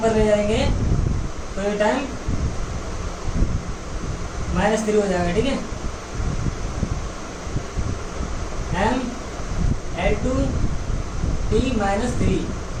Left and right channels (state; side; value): identical; both; correlation 1.00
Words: ले जाएंगे तो ये टाइम -3 हो जाएगा। ठीक है, M L two T minus 3।